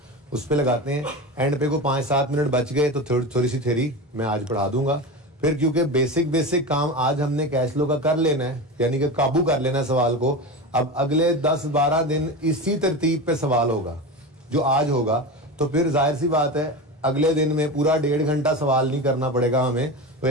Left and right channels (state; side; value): normal; both; correlation 0.25